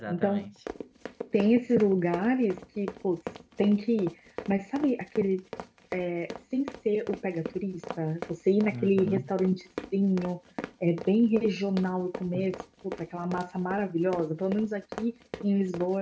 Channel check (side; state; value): both; identical; correlation 1.00